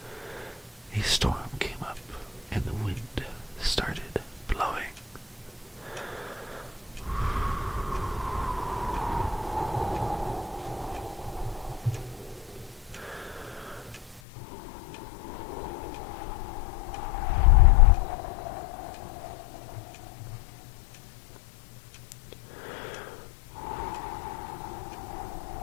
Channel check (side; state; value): right; drops out; at 14.2 s